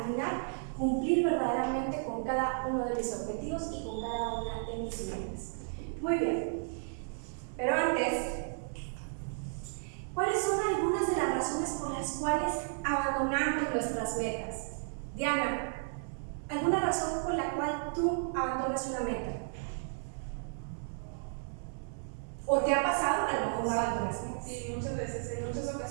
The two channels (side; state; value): left; silent; 55 dB below the other